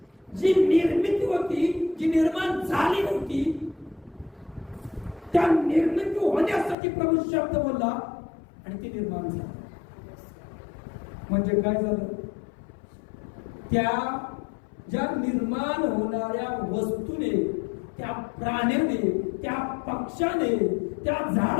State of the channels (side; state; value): right; drops out; at 6.8 s